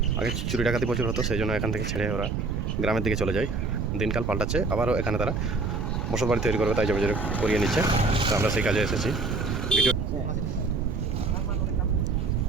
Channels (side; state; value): right; noise; rumble, 2 dB below the sound